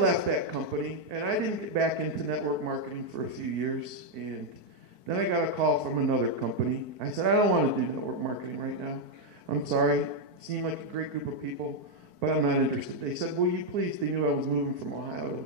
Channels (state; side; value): late; left; 4.5 ms